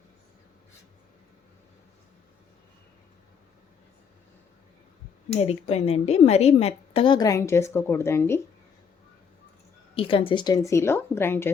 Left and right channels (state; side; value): quieter; right; 6.5 dB